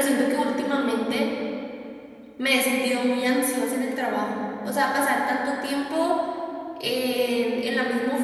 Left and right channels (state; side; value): identical; both; correlation 1.00